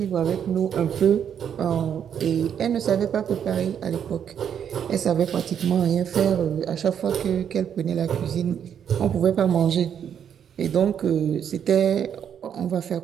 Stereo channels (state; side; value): quieter; left; 8.5 dB